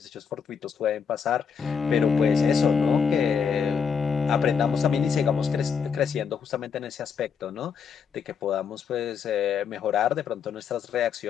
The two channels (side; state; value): right; quieter; 6.5 dB